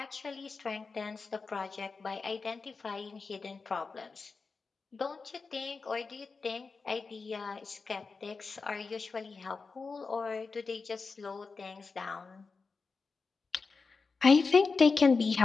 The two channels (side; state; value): right; quieter; 4.5 dB